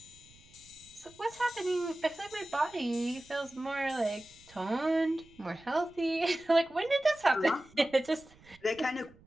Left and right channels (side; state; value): right; noise; rumble, 26 dB below the sound